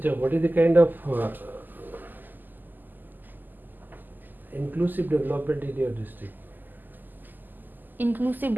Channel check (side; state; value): left; late; 0.088 ms